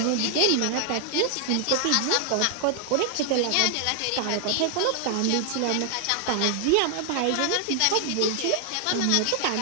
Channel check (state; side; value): different; both; correlation 0.00